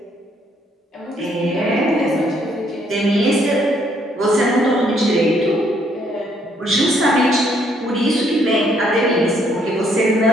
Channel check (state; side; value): normal; both; correlation 0.69